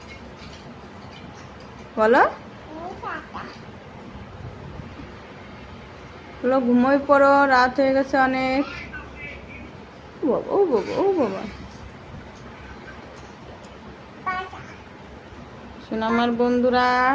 বলো বলো, ঘুমোয় পড়ো, রাত হয়ে গেছে অনেক। ও বাবা, ও বাবা, ও বাবা, শোনো আমার বন্ধুরা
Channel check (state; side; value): identical; both; correlation 1.00